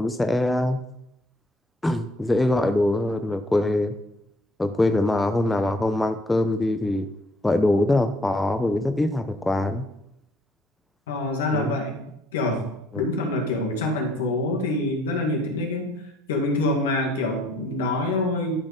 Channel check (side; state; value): both; normal; correlation 0.63